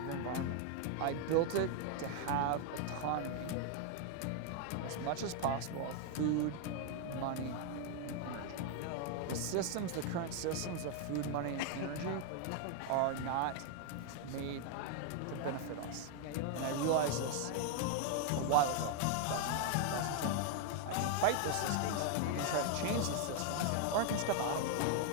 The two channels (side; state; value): both; different; correlation 0.00